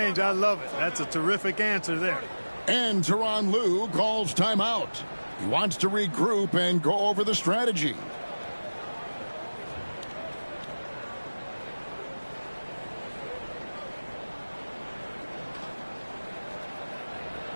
I love it. That's a terrific answer there. And Tyronn Lue calls timeout. He wants to regroup and go over the strategy.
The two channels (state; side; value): inverted; both; correlation -1.00